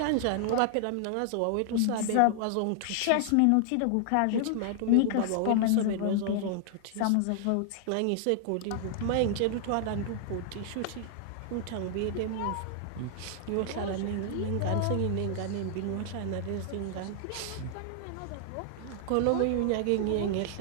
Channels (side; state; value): both; different; correlation 0.00